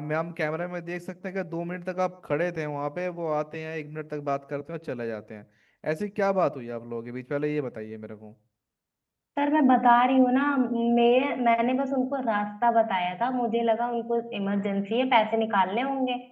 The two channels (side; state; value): both; identical; correlation 1.00